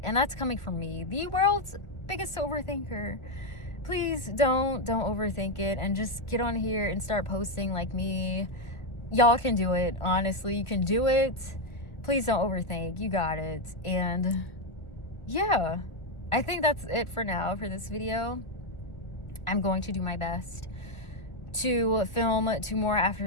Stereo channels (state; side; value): late; right; 1.4 ms